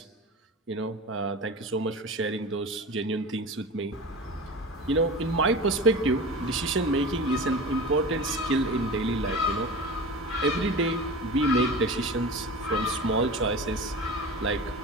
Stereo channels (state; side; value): normal; both; correlation 0.32